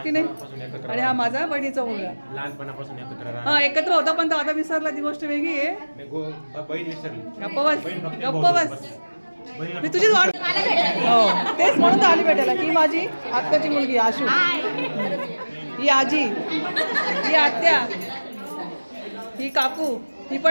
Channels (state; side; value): inverted; both; correlation -1.00